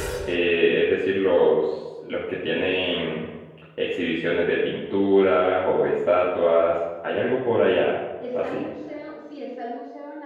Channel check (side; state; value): both; identical; correlation 1.00